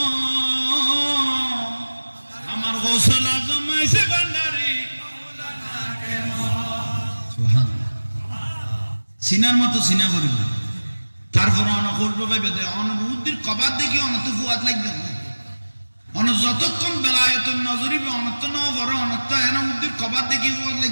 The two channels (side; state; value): both; inverted; correlation -1.00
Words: আমার গোসল আজম মাইজ ভান্ডারী সিনার মতো সিনা করিব তারপর অনেক করবো ভাই বেদে অনুভূতির কবাদ দেখি অনত ফুয়াদ লাগবে অন যতক্ষণ বেলায়তন নজরিবে অনত ন বড় অনত এনা উদ্দির কবাদ দেখি ফুয়াদ